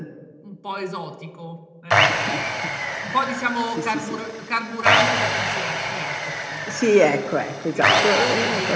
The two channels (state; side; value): identical; both; correlation 1.00